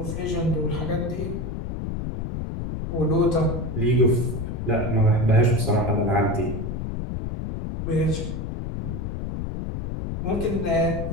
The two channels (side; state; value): left; noise; rumble, 4 dB below the sound